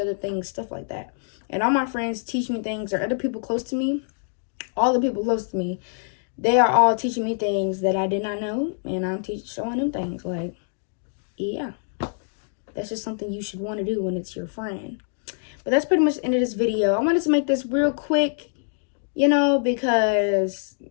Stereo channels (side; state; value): right; silent; digital silence